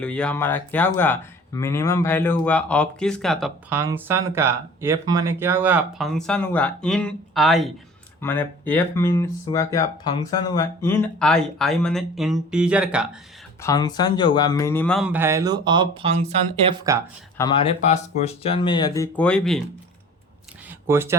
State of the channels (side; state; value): both; normal; correlation 0.45